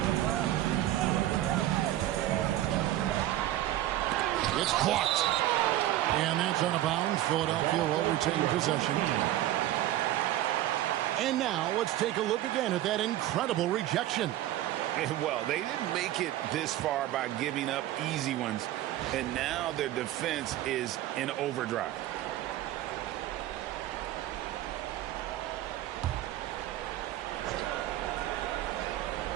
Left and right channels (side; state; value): left; quieter; 14.0 dB